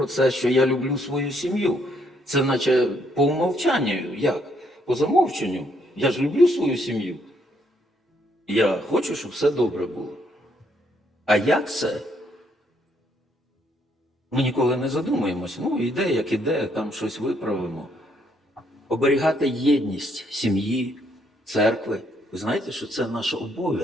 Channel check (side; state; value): both; normal; correlation 0.71